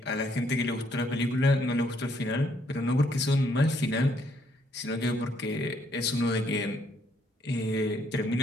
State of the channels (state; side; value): normal; both; correlation 0.70